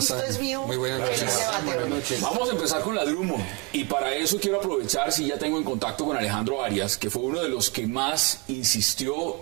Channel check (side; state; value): left; quieter; 29.4 dB